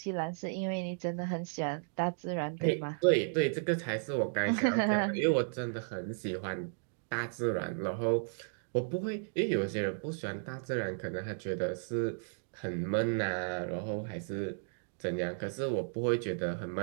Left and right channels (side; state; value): left; silent; digital silence